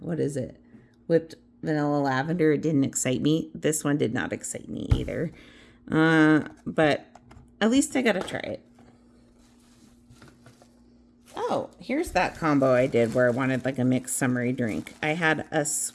whipped vanilla lavender. It didn't excite me. This one did not excite me either. But at least I got to try it. Oh, here's that combo I did where I wanted like a mixed summery drink. I had a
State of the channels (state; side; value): identical; both; correlation 1.00